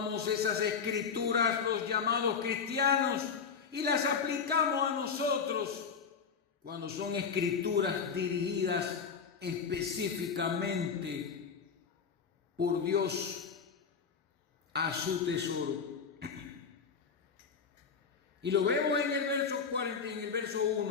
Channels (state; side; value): quieter; right; 6.1 dB